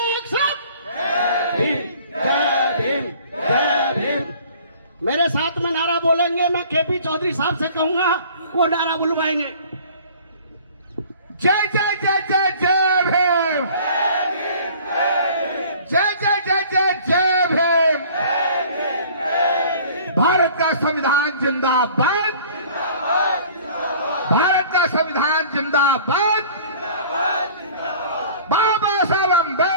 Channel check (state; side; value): inverted; both; correlation -0.49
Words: सैल्यूट, जय भीम जय भीम जय भीम। मेरे साथ में नारा बोलेंगे। मैं केपी चौधरी साहब से कहूंगा, वो नारा बुलवाएंगे। जय जय जय जय जय भीम, जय जय जय जय जय भीम। भारत का संविधान जिंदाबाद, भारत का संविधान जिंदाबाद। बाबा साहब